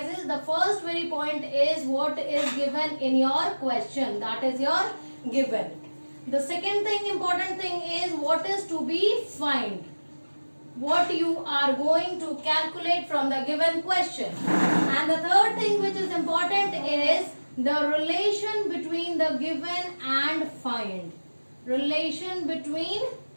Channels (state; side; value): inverted; both; correlation -1.00